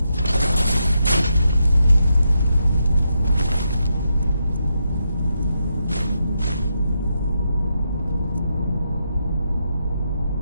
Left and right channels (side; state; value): both; inverted; correlation -0.83